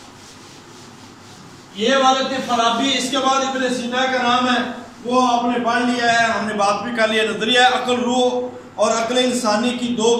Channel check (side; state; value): both; identical; correlation 1.00